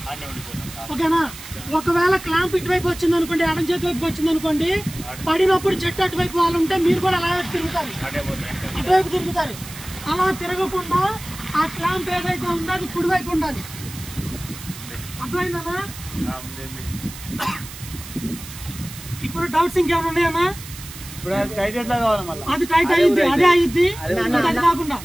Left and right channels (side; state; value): right; noise; hiss, 14 dB below the sound